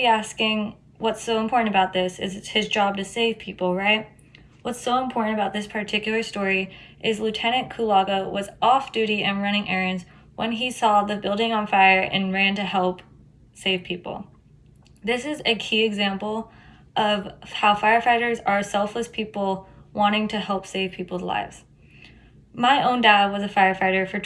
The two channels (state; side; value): identical; both; correlation 1.00